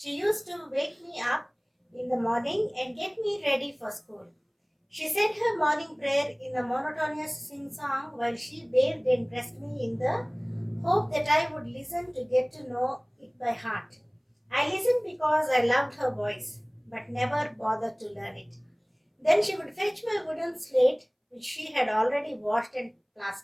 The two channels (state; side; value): identical; both; correlation 1.00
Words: used to wake me up in the morning and get me ready for school. She said her morning prayer in a monotonous sing song while she bathed and dressed me in the hope that I would listen to get to know it by heart. I listened because I loved her voice, but never bothered to learn it. Then she would fetch my wooden slate, which she had already washed and